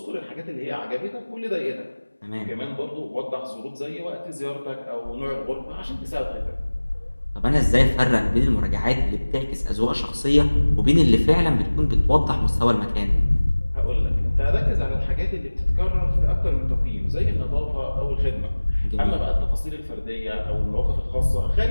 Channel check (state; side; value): inverted; both; correlation -1.00